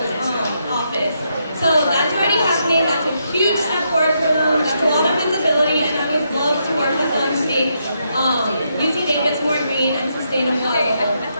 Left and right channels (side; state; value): both; inverted; correlation -0.79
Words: office. So that's already happening, that's a huge step forward for them, that's a lot of visibility, and I would love to work with them to make UC Davis more green and sustainable as well.